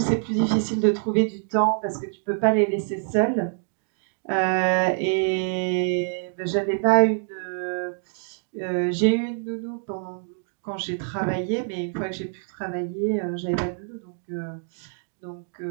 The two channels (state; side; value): silent; left; digital silence